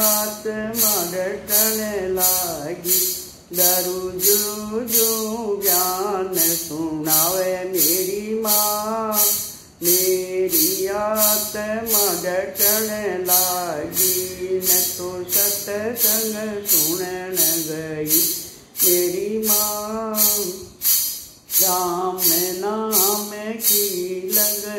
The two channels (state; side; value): identical; both; correlation 1.00